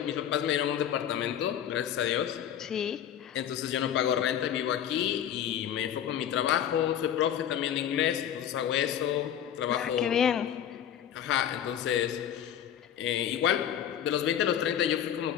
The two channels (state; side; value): quieter; right; 9.9 dB